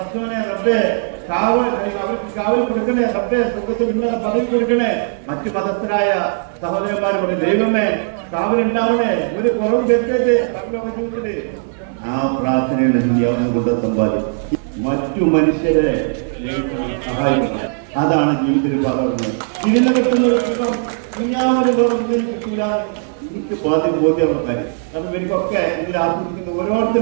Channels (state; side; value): silent; left; 66 dB below the other